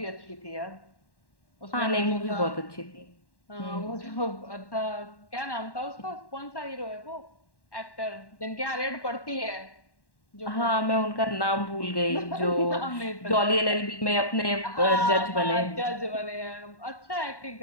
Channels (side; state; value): right; late; 1.1 ms